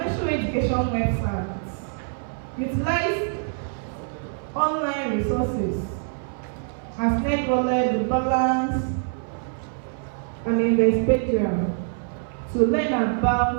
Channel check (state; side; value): silent; left; 60 dB below the other